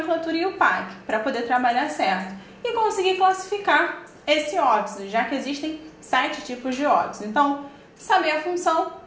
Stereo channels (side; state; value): both; identical; correlation 1.00